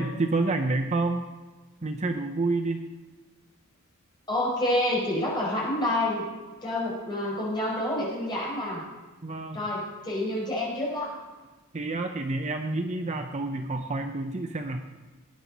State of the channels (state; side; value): normal; both; correlation 0.48